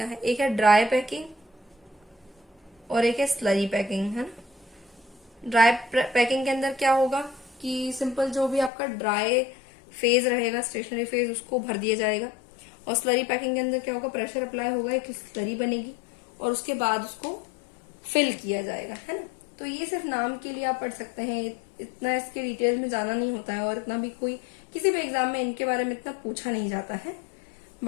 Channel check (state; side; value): drops out; right; at 8.7 s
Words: है। एक है ड्राई पैकिंग और एक है स्लरी पैकिंग, है ना। ड्राई पैकिंग के अंदर क्या होगा कि सिंपल जो भी आपका ड्राई फेज रहेगा, स्टेशनरी फेज, उसको भर दिया जाएगा। और स्लरी पैकिंग के अंदर क्या होगा, प्रेशर अप्लाई होगा, एक स्लरी बनेगी और उसके बाद उसको फिल किया जाएगा, है ना। तो ये सिर्फ नाम के लिए आप पढ़ सकते हैं, इतना इसके डिटेल में जाना नहीं होता है, और इतना भी कोई किसी भी एग्जाम में इनके बारे में इतना पूछा नहीं जाता है।